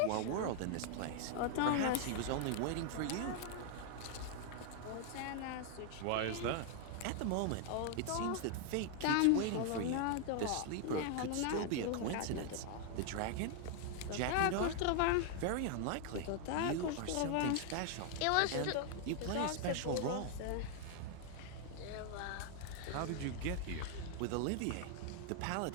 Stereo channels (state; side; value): different; both; correlation 0.00